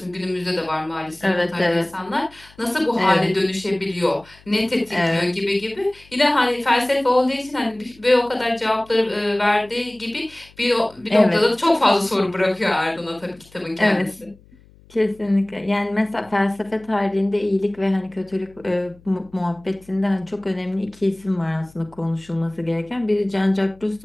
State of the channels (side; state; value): left; noise; hum, 27 dB below the sound